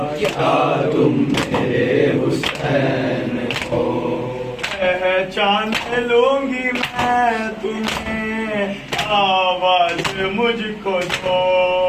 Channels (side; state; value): both; identical; correlation 1.00